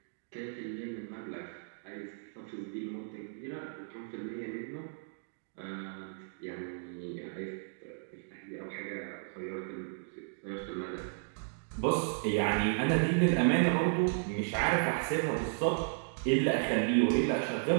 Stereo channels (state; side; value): silent; left; digital silence